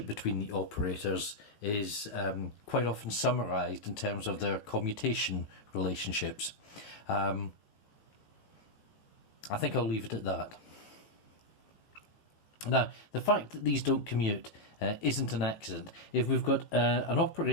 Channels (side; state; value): right; late; 18 ms